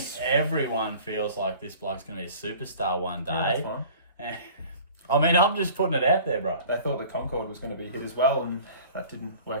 everyone feels like this bloke's going to be a superstar one day. That's fine. I mean, I'm just putting it out there, bro. They thought the Concorde was going to be hit as well, and that didn't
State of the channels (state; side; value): inverted; both; correlation -0.45